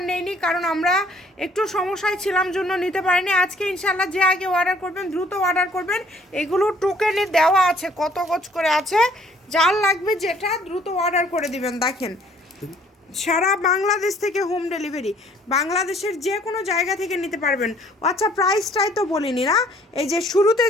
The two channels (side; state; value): both; normal; correlation 0.59